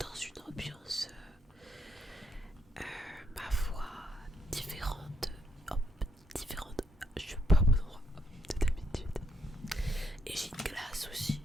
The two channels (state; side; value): normal; both; correlation 0.79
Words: une ambiance, ma foi, différente. Hop, différente. Je suis pas au bon endroit de d'habitude. Et j'ai une glace aussi.